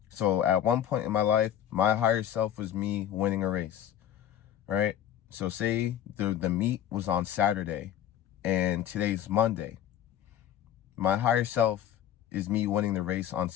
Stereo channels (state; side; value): quieter; right; 10.7 dB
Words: So at one point in my life, my higher self was me winning a race, right? So say the meet was on Saturday and today's Monday. My higher self is me winning the race on